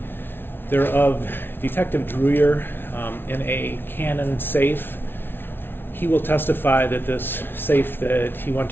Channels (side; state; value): right; late; 0.11 ms